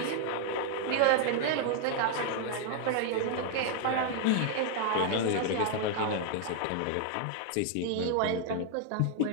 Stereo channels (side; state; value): both; different; correlation 0.00